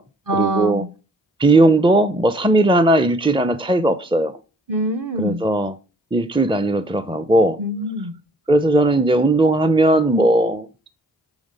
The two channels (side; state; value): both; normal; correlation 0.62